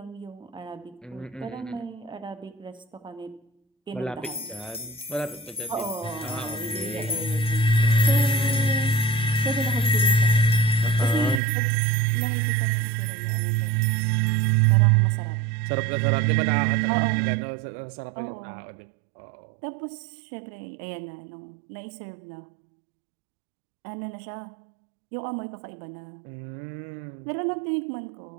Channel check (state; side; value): drops out; left; at 11.4 s